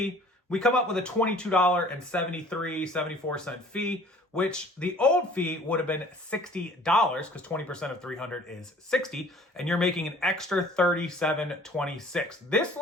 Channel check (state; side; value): normal; both; correlation 0.52